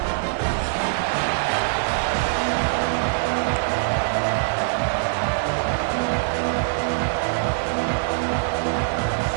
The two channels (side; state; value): left; silent; digital silence